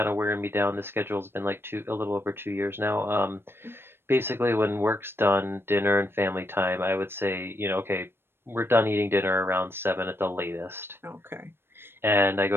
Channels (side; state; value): left; late; 0.11 ms